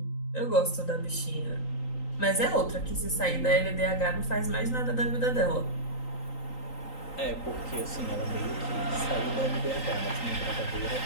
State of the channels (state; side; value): late; right; 3.9 ms